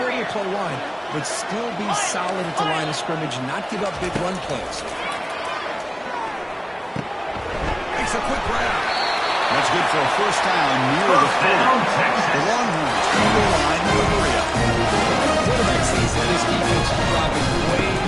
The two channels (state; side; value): identical; both; correlation 1.00